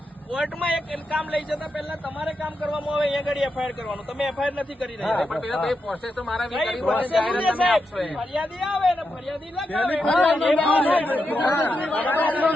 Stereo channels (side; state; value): both; normal; correlation 0.86